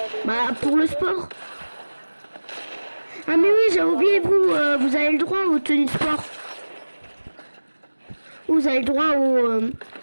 des. Bah, pour le sport. Ah, mais oui, j'ai oublié, vous avez le droit aux tenues de sport. Vous avez le droit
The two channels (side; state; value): both; inverted; correlation -1.00